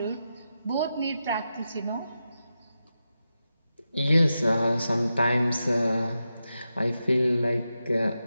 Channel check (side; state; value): both; inverted; correlation -0.89